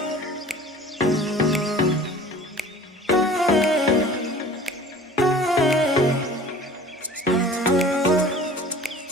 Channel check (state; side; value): normal; both; correlation 0.45